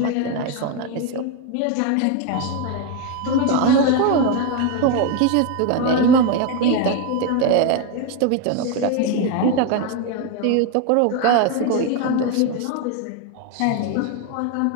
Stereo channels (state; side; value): different; both; correlation 0.02